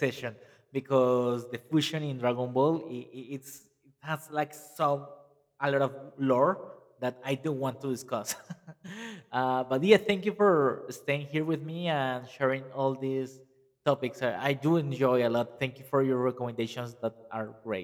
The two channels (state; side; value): identical; both; correlation 1.00